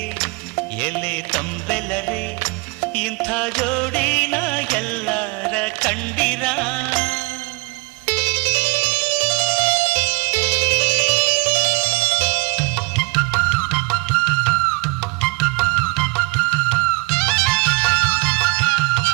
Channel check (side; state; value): left; quieter; 26.4 dB